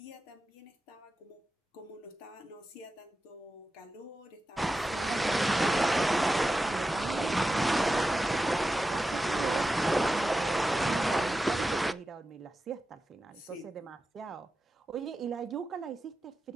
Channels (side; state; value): both; normal; correlation 0.92